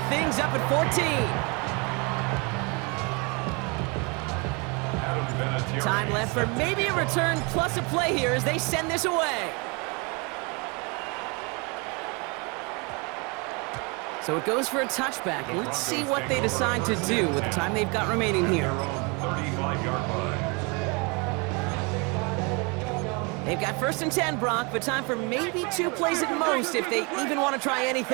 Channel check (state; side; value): quieter; left; 30.4 dB